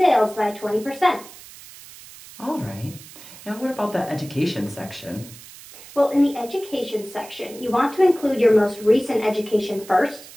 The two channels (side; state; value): right; noise; hiss, 18 dB below the sound